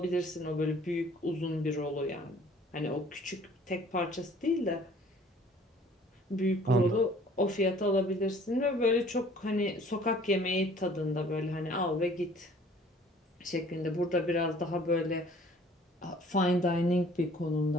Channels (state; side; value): normal; both; correlation 0.54